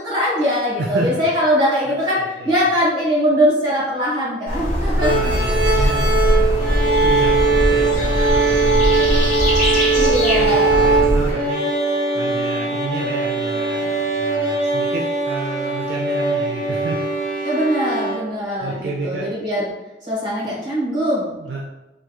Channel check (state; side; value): normal; both; correlation 0.41